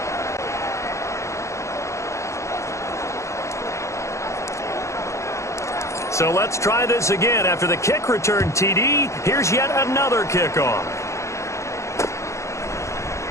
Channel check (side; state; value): right; late; 0.14 ms